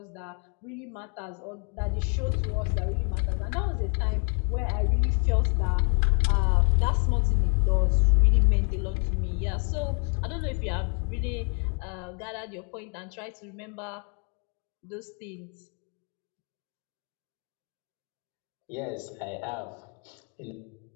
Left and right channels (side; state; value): right; quieter; 39.5 dB